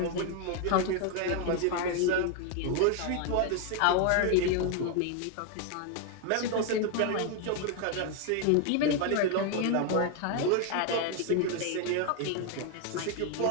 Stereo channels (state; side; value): different; both; correlation 0.01